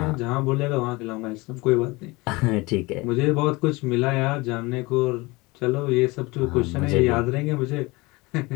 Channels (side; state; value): right; quieter; 23.7 dB